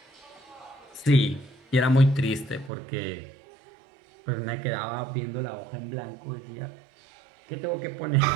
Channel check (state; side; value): drops out; left; at 2.7 s